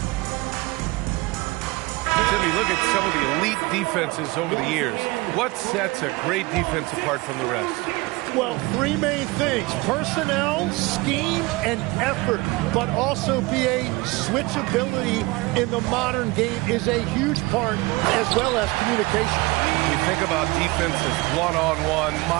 Timmy, look at some of the elite defenses over the years. What sets a great defense apart from the rest? Well, three main things: personnel, scheme, and effort. But also BA, switchability in the modern game is a huge part, as well as communication. We think about defense as one-on-one,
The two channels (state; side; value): quieter; left; 23.0 dB